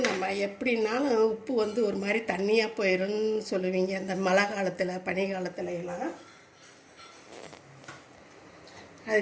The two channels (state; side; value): identical; both; correlation 1.00